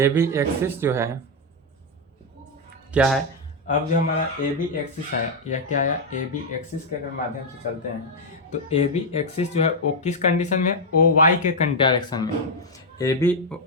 एक्सिस जो है क्या है, अब जो हमारा AB एक्सिस है, यह क्या है, AB एक्सिस के माध्यम से चलते हैं। तो AB एक्सिस जो है वो किस कंडीशन में, OY के डायरेक्शन में। AB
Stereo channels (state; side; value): normal; both; correlation 0.01